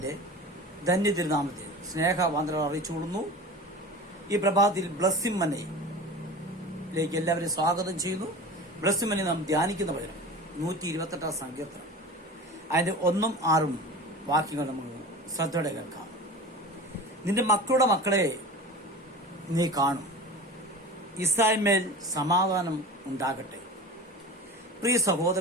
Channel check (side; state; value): both; normal; correlation 0.34